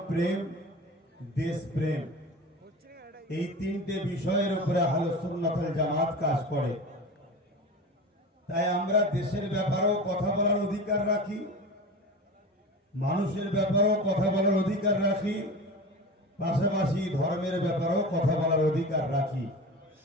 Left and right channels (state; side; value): normal; both; correlation 0.31